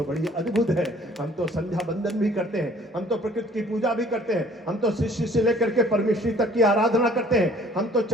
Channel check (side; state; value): both; normal; correlation 0.55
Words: बड़ी अद्भुत है। हम तो संध्या बंदन भी करते हैं, हम तो प्रकृति की पूजा भी करते हैं, हम तो शिष्य से लेकर के परमेश्वरी तक की आराधना करते हैं। हम तो